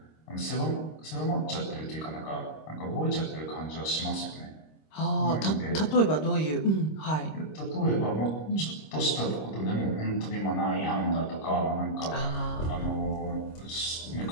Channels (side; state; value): right; late; 26 ms